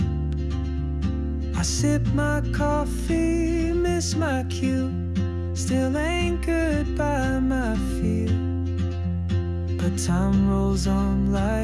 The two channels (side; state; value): both; identical; correlation 1.00